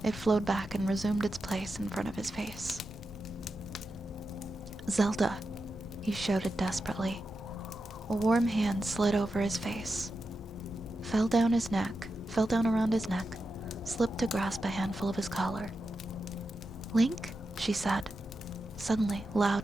it flowed back and resumed its place in front of his face. "Zelda," he shouted desperately. A warm hand slid over his face, fell down around his neck, slipped to grasp a handful of his collar. "Link?" she said, suddenly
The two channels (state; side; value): normal; both; correlation 0.89